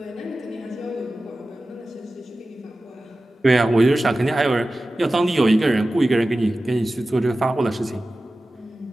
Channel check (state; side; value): normal; both; correlation 0.95